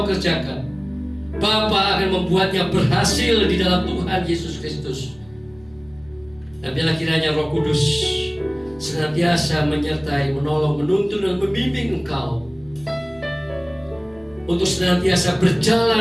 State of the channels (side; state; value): left; noise; hum, 27 dB below the sound